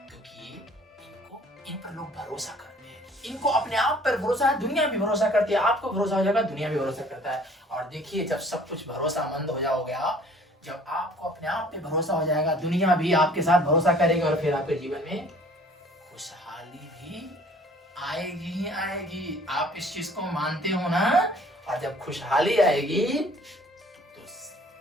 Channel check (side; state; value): both; normal; correlation 0.53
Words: क्योंकि इनको इन पर लोग भरोसा करते हैं, इनको अपने आप पर भरोसा है, दुनिया भी भरोसा करती है। आपको भरोसा हो जाएगा, दुनिया भी भरोसा करता है। और देखिए जब सब कुछ भरोसामंद हो जाओगे आप, जब आपको अपने आप पे भरोसा हो जाएगा, दुनिया भी आपके साथ भरोसा करेगी और फिर आपके जीवन में खुशहाली भी आएगी ही आएगी। आप इस चीज को मानते हो ना? और जब खुशहाली आएगी तो